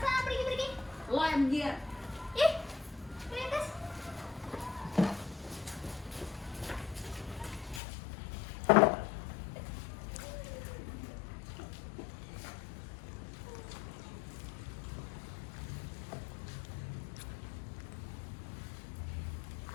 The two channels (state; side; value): drops out; right; at 7.8 s